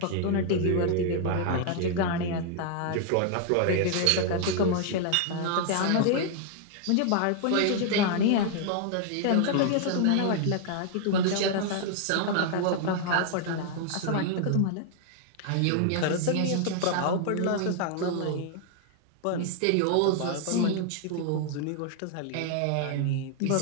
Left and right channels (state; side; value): different; both; correlation -0.01